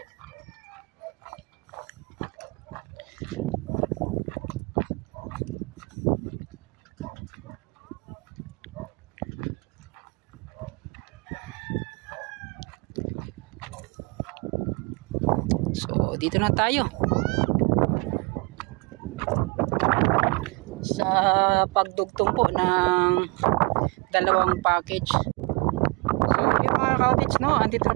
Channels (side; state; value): left; quieter; 28.8 dB